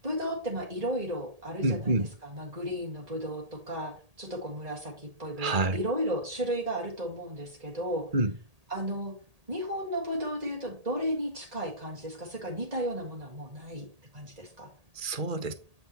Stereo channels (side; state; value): left; late; 1.8 ms